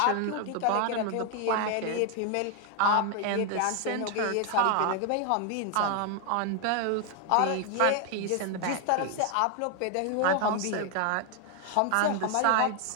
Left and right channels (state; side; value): different; both; correlation 0.00